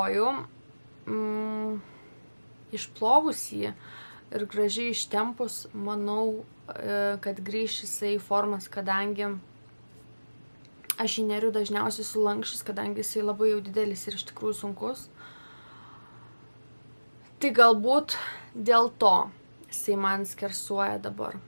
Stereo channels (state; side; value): inverted; both; correlation -1.00